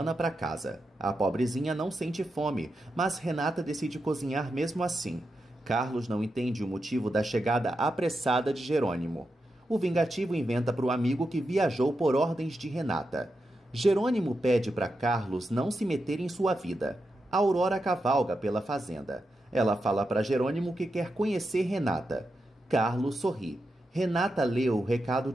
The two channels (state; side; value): normal; both; correlation 0.87